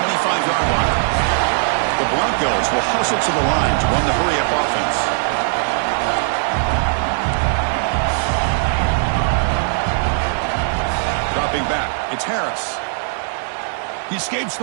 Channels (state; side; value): silent; left; digital silence